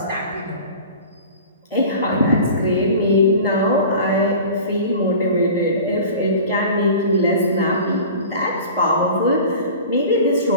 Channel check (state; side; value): inverted; both; correlation -0.39